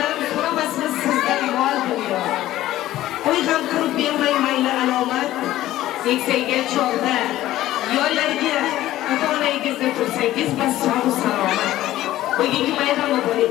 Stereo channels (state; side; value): quieter; right; 14.6 dB